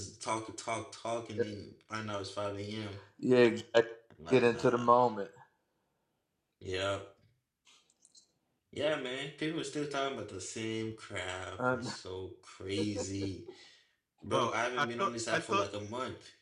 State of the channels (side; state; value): both; identical; correlation 1.00